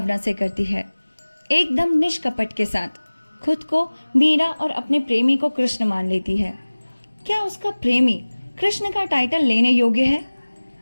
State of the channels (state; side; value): inverted; both; correlation -1.00